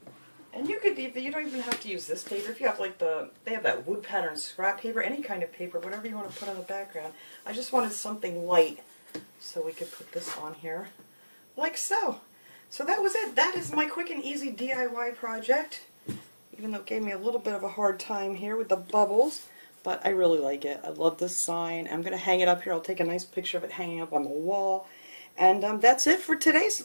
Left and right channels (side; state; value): both; inverted; correlation -1.00